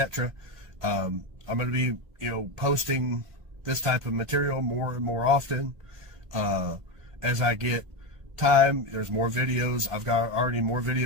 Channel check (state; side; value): late; left; 1.5 ms